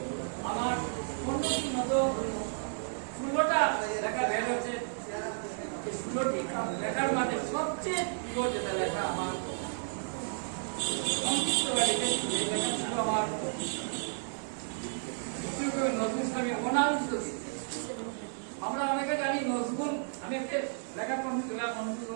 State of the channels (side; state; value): left; silent; digital silence